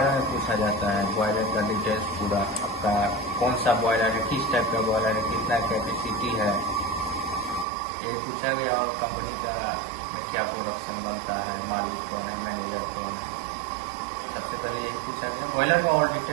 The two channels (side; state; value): left; drops out; at 7.7 s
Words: में पूछा जाता है। बॉयलर का डिटेल्स पूरा, आपका कौन सा बॉयलर है, किस टाइप का बॉयलर है, कितना कैपेसिटी है, ये पूछा गया। और कंपनी का में क्या प्रोडक्शन बनता है, मालिक कौन है, मैनेजर कौन है, सबसे पहले यही पूछा गया। बॉयलर का और